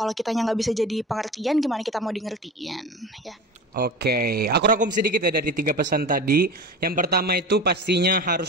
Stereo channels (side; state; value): both; normal; correlation 0.31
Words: kitanya nggak bisa jadi pengertian, gimana kita mau di ngertiin ya? Oke, aku rangkum sedikit ya dari 3 pesan tadi. Yang pertama itu pastinya harus